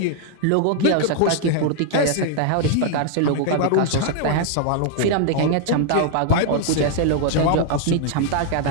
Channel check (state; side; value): different; both; correlation 0.00